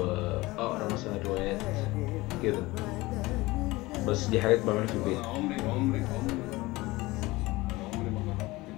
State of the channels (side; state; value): right; quieter; 20.7 dB